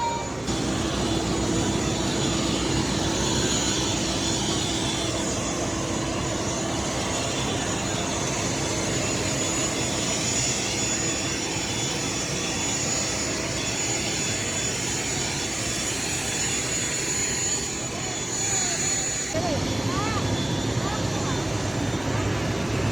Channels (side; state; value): right; noise; rumble, 23 dB below the sound